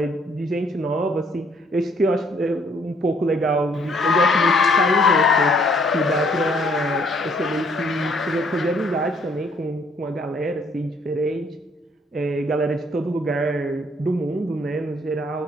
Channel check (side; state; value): both; normal; correlation 0.64